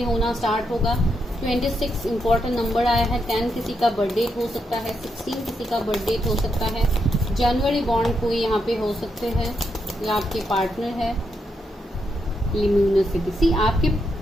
होना स्टार्ट होगा। 26 इंपॉर्टेंट नंबर आया है। 10 किसी का बर्थडे हो सकता है, 16 किसी का बर्थडे हो सकता है, जनवरी बॉन्ड कोई यहाँ पे हो सकते हैं, या आपके पार्टनर है। लिम्यूनसिटी, सी आपके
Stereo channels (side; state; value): both; normal; correlation 0.81